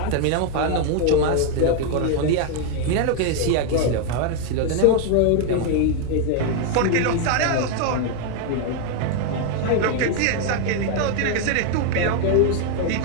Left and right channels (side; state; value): both; different; correlation 0.00